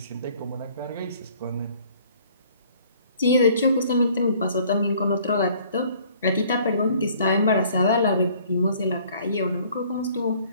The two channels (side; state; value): both; inverted; correlation -0.57